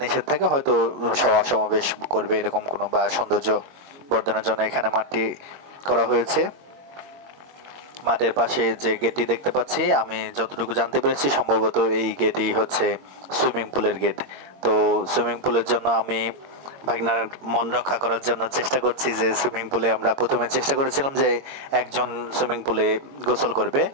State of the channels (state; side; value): late; left; 22 ms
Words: নিষেধ থাকে হয়তো সভা সমাবেশ করবে এরকম কোনো, বা সৌন্দর্য বর্ধনের জন্য এখানে মাঠটি করা হয়েছে। মাঠের পাশে যে গেটটি দেখতে পাচ্ছি, আমি যতটুকু জানতে পেরেছি সম্ভবত এই গেটই হচ্ছে সুইমিং পুলের গেট। তো সুইমিং পুলের জন্য আমি ভাগনার মন রক্ষা করার জন্য চেষ্টা করছি যে সুইমিং পুলে আমরা প্রথমে চেষ্টা করেছিলাম যে একজন সুইমিং পুলে গোসল করবে,